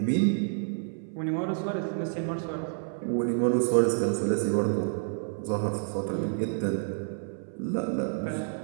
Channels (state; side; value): silent; left; 59 dB below the other